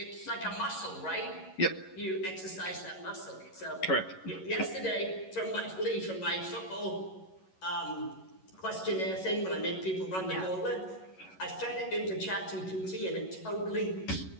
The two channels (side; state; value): right; late; 11 ms